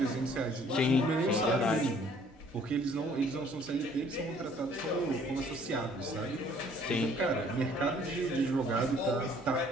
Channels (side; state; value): both; normal; correlation 0.59